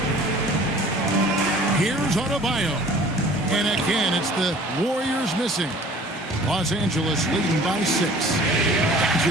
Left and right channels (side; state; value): both; normal; correlation 0.49